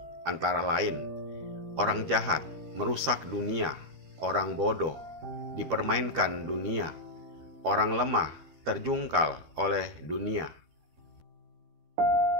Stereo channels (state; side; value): late; left; 13 ms